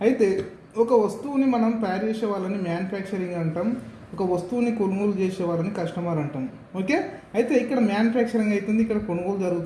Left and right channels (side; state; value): both; identical; correlation 1.00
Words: అయితే ఒక వస్తువుని మనం తయారు చేసే వాళ్ళని మ్యానుఫ్యాక్చరింగ్ అంటాం, ఒక వస్తువుని కొనుగోలు చేసే వాళ్ళని కస్టమర్ అంటాం. ఓకే, అయితే ఇక్కడ మ్యానుఫ్యాక్చరింగ్ అవుతుంది, ఇక్కడ కొనుగోలు